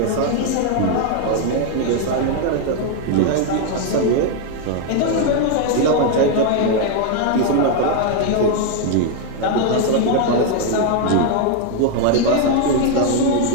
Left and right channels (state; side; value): different; both; correlation 0.00